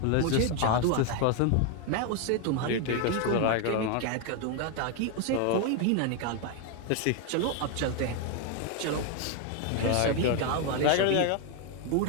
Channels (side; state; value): both; different; correlation 0.01